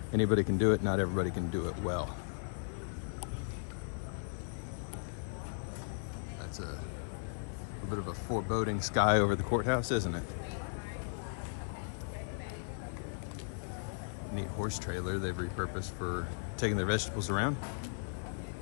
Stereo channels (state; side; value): silent; right; digital silence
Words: Anybody can do it, not everybody can do it well. That's a bit of a foreboding sky over the courthouse, isn't it? Neat horse trailer they've repurposed for taking their vegetables around.